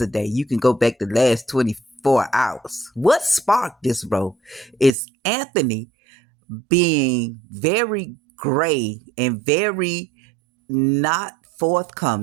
You can go back the last 24 hours. What sparked this, bro, is Anthony being very gray and very not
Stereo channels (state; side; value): drops out; left; at 5.0 s